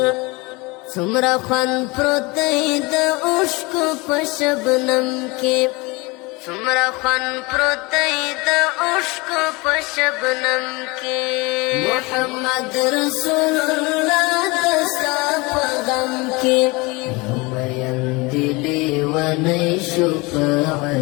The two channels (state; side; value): quieter; right; 25.0 dB